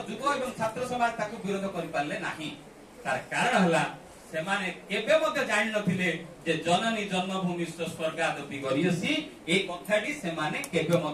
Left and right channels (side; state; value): both; identical; correlation 1.00